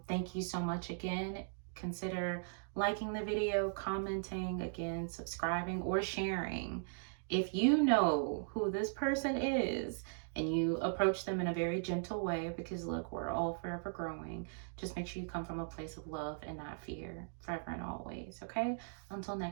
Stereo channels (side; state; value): left; silent; digital silence